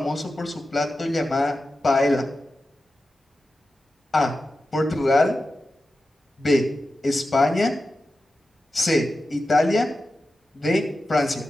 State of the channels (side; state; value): both; normal; correlation 0.92